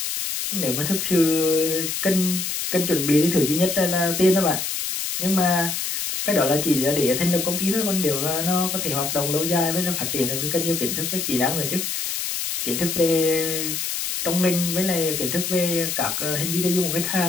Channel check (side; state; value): left; noise; hiss, 2 dB below the sound